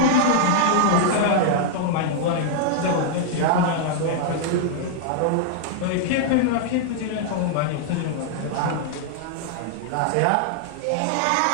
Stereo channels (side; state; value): both; different; correlation -0.01